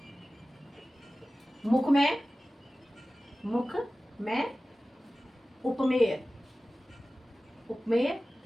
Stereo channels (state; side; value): normal; both; correlation 0.96